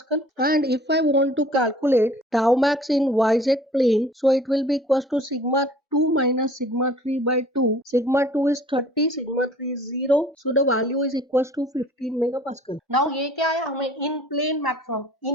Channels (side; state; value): both; normal; correlation 0.51